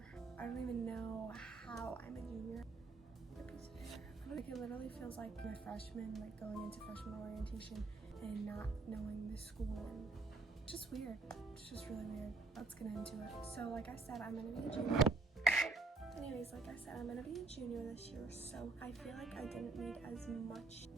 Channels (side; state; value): left; quieter; 3.6 dB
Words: I don't even know how I'm a junior. Like, it literally feels like a freshman, like going into freshman orientation and not knowing the school, and it's just weird. It's just really weird. Let's get into it. So like I said, I'm going to be a junior. Anyways, like I said, I'm gonna be a junior this year, so I feel like I didn't need as much